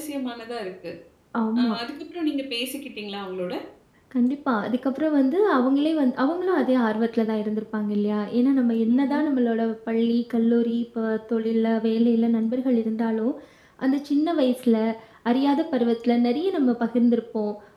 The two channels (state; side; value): identical; both; correlation 1.00